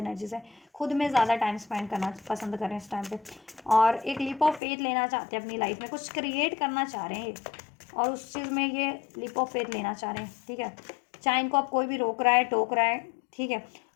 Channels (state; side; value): drops out; right; at 4.6 s